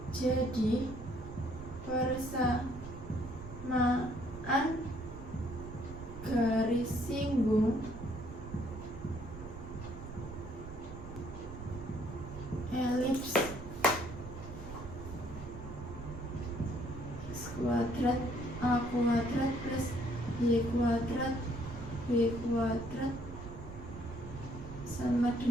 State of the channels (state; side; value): noise; right; rumble, 12 dB below the sound